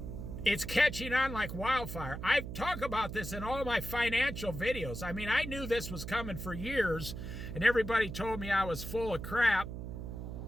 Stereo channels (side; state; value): right; noise; hum, 7 dB below the sound